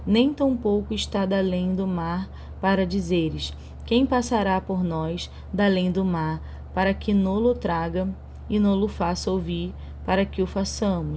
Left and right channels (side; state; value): both; identical; correlation 1.00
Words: Nem tampouco está da além do mar para dizeres: quem passará por nós da além do mar, para que nolo traga e nolo faça ouvir para que o